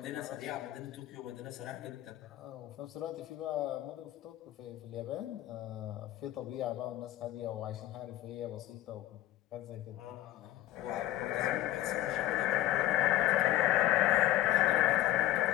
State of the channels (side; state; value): right; quieter; 14.3 dB